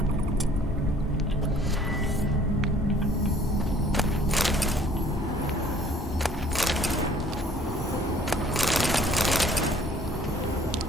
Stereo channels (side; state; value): both; normal; correlation 0.55